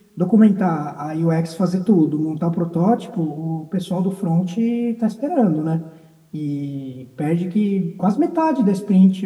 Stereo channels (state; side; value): identical; both; correlation 1.00